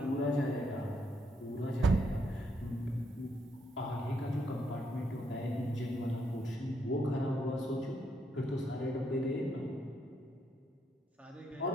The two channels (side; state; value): both; normal; correlation 0.76